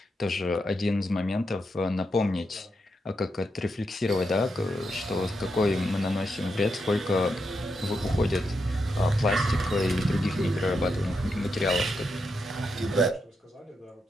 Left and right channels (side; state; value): both; normal; correlation 0.84